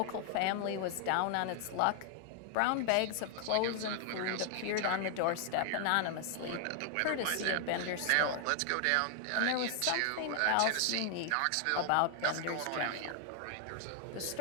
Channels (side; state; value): both; different; correlation 0.00